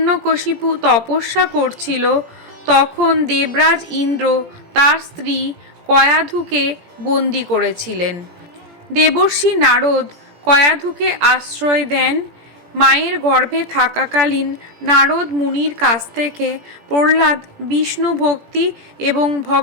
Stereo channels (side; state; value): left; late; 17 ms